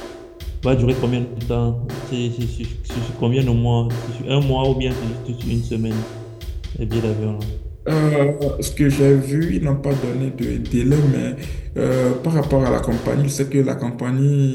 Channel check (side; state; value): both; identical; correlation 1.00